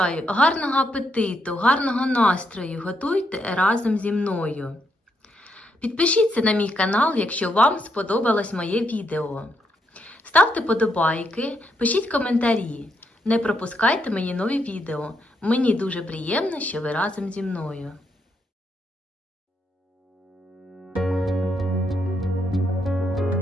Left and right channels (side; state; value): both; normal; correlation 0.78